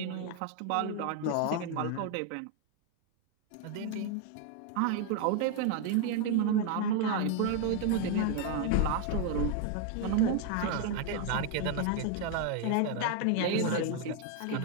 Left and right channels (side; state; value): both; different; correlation 0.01